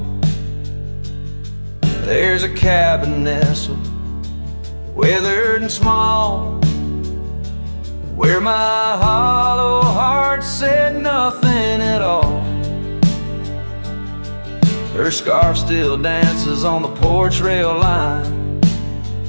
there's a cabin nestled, weathered and small, where my hollow heart said nothing at all. Her scarf still dances on the porch rail line,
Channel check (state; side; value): inverted; both; correlation -1.00